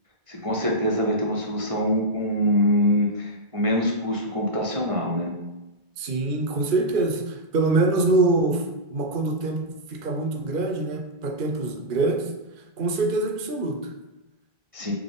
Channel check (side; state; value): left; late; 2.4 ms